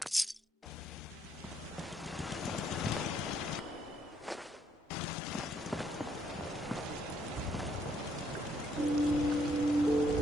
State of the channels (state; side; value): normal; both; correlation 0.71